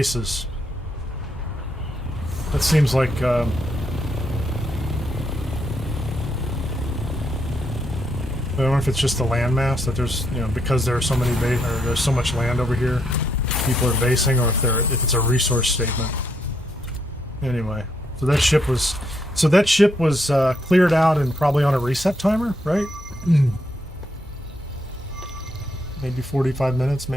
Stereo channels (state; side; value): normal; both; correlation 0.76